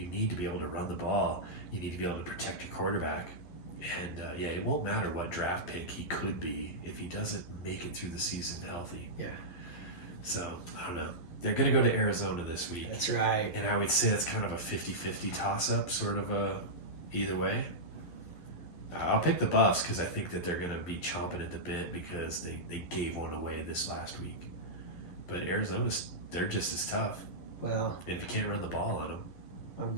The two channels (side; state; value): right; late; 11 ms